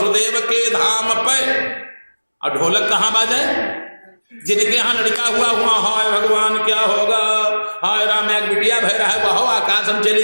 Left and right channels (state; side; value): inverted; both; correlation -1.00